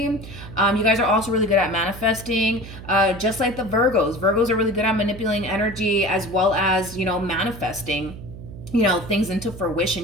You guys are also really good at manifesting, just like the Virgos. Virgos are really good at manipulating energy as well as, you know, manifesting, you know, things into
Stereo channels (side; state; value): right; noise; hum, 13 dB below the sound